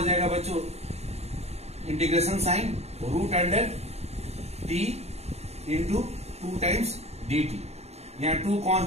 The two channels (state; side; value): late; left; 0.31 ms